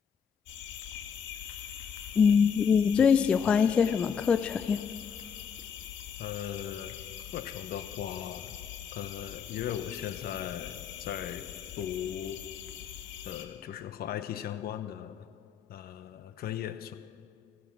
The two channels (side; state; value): right; quieter; 6.8 dB